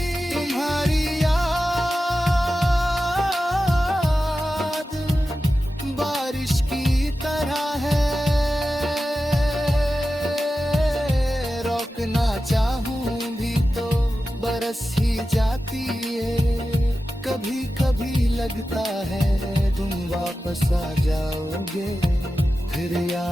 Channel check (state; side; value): normal; both; correlation 0.93